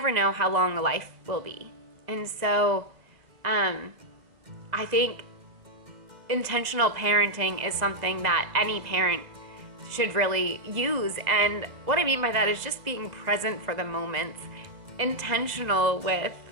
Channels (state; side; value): late; left; 2.0 ms